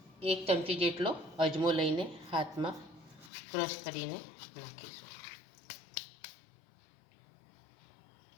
1 ચમચી જેટલો અજમો લઈને હાથમાં ક્રશ કરીને નાખીશું।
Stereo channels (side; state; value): right; drops out; at 3.3 s